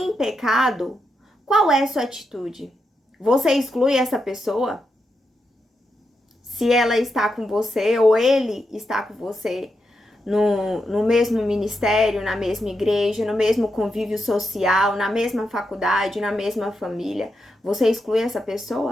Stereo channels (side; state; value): both; normal; correlation 0.85